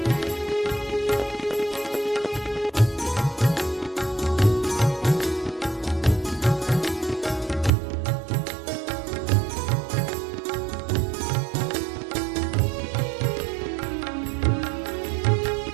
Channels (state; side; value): drops out; left; at 7.7 s